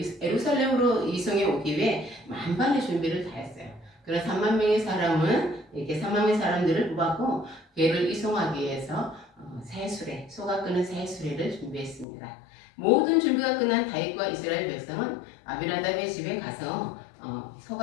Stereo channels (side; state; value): right; drops out; at 12.1 s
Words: 예루살렘으로 이송해 오기 위해 만반의 준비를 다 했어요. 그런 3만 명의 사람은 이렇게 3만 명의 사람들을 뽑았고 궤를 이송하기 위해서 새 수레, 소가 끄는 새 수레를 준비했습니다. 모든 준비가 끝난 다윗과 이스라엘 백성은 아비나답의 집에 가서